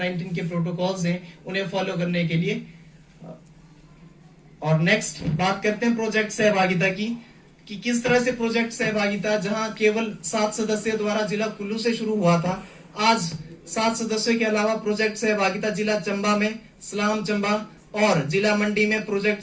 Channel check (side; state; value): both; identical; correlation 1.00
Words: के प्रोटोकॉल्स हैं उन्हें फॉलो करने के लिए। और नेक्स्ट बात करते हैं प्रोजेक्ट सहभागिता की, कि किस तरह से प्रोजेक्ट सहभागिता जहां केवल 7 सदस्यों द्वारा जिला कुल्लू से शुरू हुआ था, आज 7 सदस्यों के अलावा प्रोजेक्ट सहभागिता जिला चंबा में, सलाम चंबा और जिला मंडी में प्रोजेक्ट